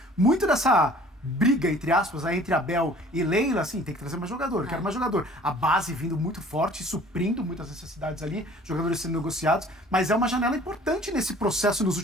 muito dessa briga, entre aspas, aí, entre Abel e Leila, assim, tem que trazer mais jogador, quero mais jogador. A base vindo muito forte, suprindo muitas necessidades ali, jogadores sendo negociados, mas é uma janela importante nesse processo nos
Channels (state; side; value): normal; both; correlation 0.50